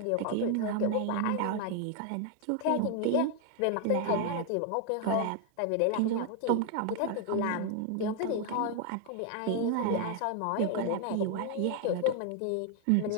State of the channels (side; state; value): both; different; correlation 0.00